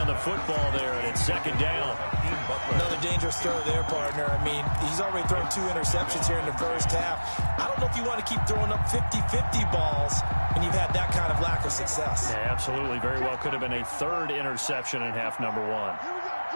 the football there, and it's 2nd down. Another dangerous throw there, partner. I mean, he's already thrown 2 interceptions here in the 1st half. I don't know if you want to keep throwing up 50-50 balls when you've had that kind of lack of success. Yeah, absolutely. Very well could have been a 3rd interception in half number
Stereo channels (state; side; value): inverted; both; correlation -1.00